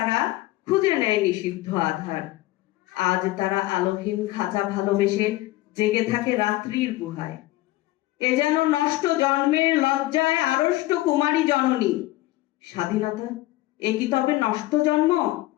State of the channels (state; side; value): quieter; right; 17.9 dB